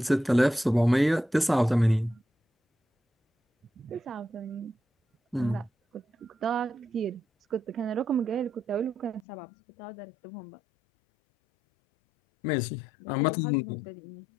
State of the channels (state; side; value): drops out; right; at 9.2 s